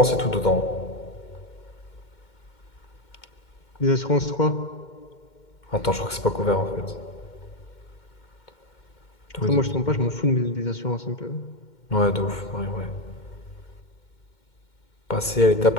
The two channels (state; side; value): late; right; 2.1 ms